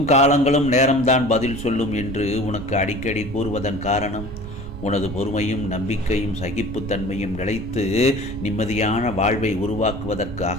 காலங்களும் நேரம்தான் பதில் சொல்லும் என்று உனக்கு அடிக்கடி கூறுவதன் காரணம் உனது பொறுமையும் நம்பிக்கையும் சகிப்புத்தன்மையும் நிலைத்து நிம்மதியான வாழ்வை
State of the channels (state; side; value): noise; right; rumble, 11 dB below the sound